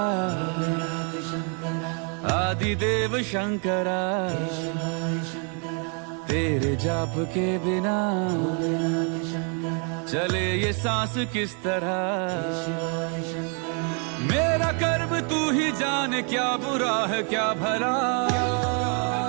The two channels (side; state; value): left; quieter; 39.2 dB